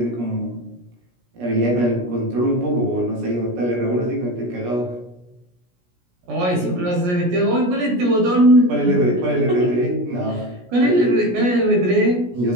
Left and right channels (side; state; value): left; late; 17 ms